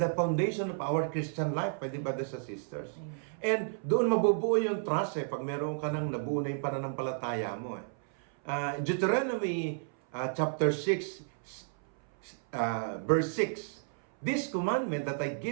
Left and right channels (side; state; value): left; silent; 56 dB below the other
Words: foundation of our Christian life, pwede ba, brothers and sisters? Amen. And doon mabubuo yung trust pag meron ka nang nabuo na yung pananampalataya mo. Deuteronomy chapter 6, verse 6, this commandment that I